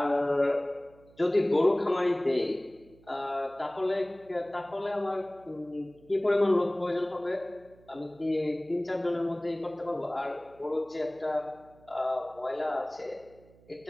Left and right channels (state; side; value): noise; right; hum, 27 dB below the sound